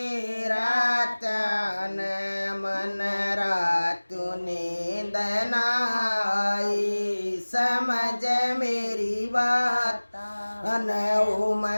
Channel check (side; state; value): both; inverted; correlation -1.00